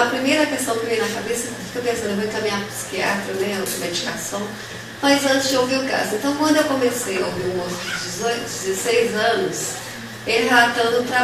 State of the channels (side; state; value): both; identical; correlation 1.00